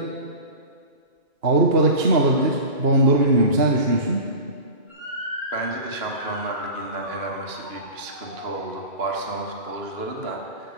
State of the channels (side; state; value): left; late; 2.9 ms